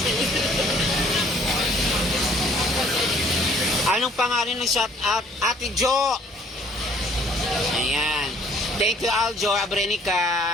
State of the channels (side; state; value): both; normal; correlation 0.59